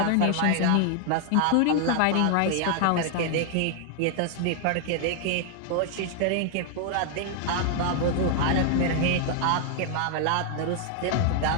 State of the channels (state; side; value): different; both; correlation 0.00